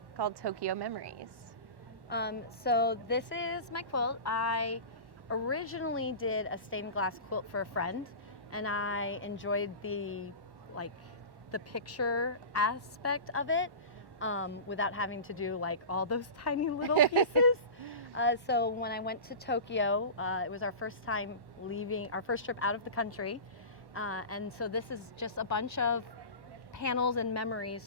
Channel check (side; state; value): left; late; 1.1 ms